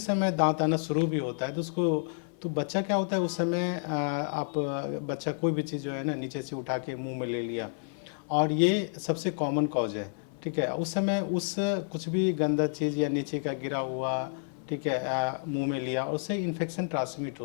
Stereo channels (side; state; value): right; silent; 55 dB below the other